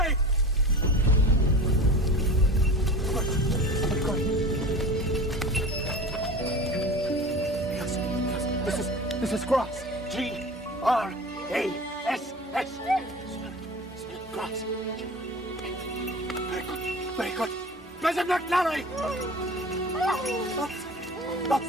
This is Gross. G-R-A-S-S. Gross. Very good. Mrs. McNally!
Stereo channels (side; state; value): both; normal; correlation 0.36